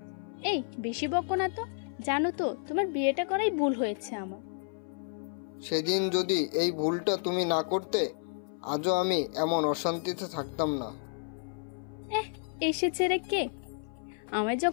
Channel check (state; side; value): silent; right; 57 dB below the other